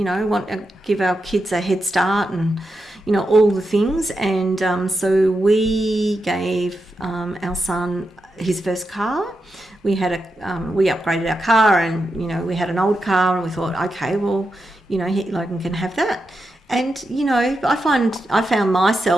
want to give our kids a head start and, all the things. And so we gave our son his first car. We upgraded our car, and, we had an old car, and we thought, okay, well, Logan can have that. And, I found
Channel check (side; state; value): both; normal; correlation 0.87